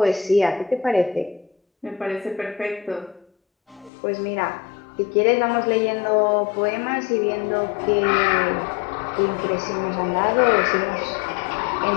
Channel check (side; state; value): right; drops out; at 3.9 s